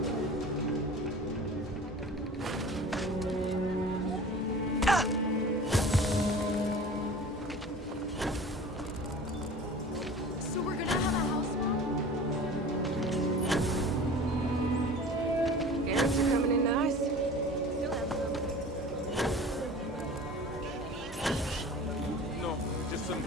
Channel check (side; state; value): both; normal; correlation 0.40